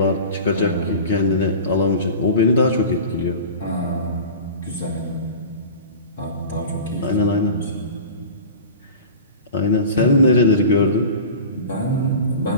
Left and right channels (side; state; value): both; inverted; correlation -0.36